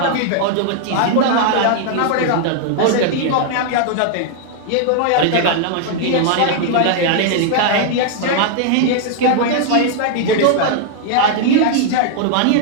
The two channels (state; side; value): different; both; correlation -0.01